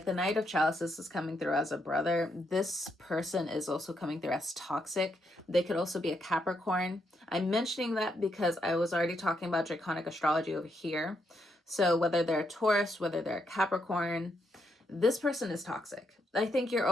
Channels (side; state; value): both; normal; correlation 0.78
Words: the Knight of Chalices is coming through as a brother, this person is also coming through as toxic. They could also be a Capricorn. I'm mentioning that because I was already talking about Draconic astrology over here. So whether they're a Taurus, whether they're a Capricorn, this person is toxic. I think